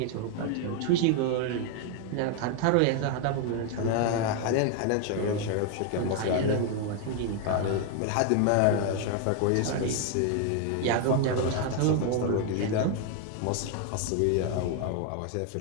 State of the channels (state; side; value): different; both; correlation 0.01